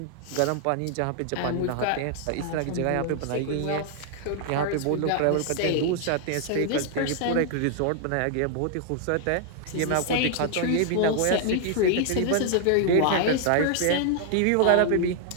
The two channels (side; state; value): both; different; correlation -0.01